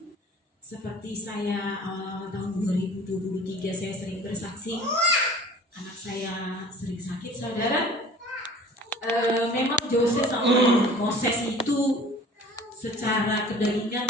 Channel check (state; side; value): normal; both; correlation 0.46